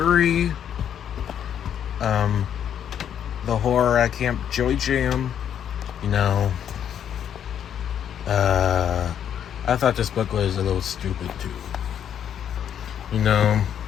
The Horror at Camp Joy Jam. You know, I I thought this book was a little stupid too. You know,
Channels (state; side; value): quieter; right; 9.2 dB